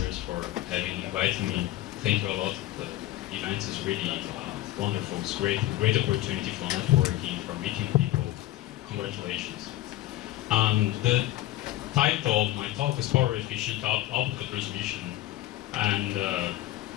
for having invited me. Thank you a lot. The event is really wonderful. It's great opportunity for networking, for meeting people. Congratulations. The title of my talk is Power Efficient Optical Transmission, and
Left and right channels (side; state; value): right; quieter; 15.2 dB